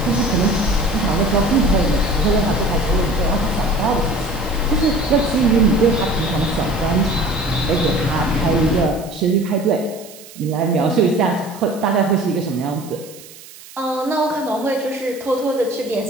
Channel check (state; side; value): noise; right; hiss, 19 dB below the sound